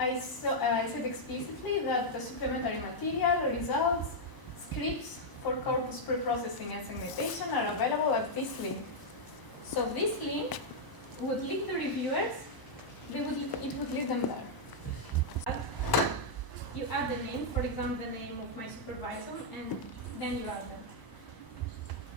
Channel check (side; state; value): right; late; 1.0 ms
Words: said explicitly that the supplementary material, results, scripts for corpus preprocessing and segmentation are available at this link. So this link would link the reviewers, it would lead them there. You add the name, for example, the name of my supervisor, and then you add them.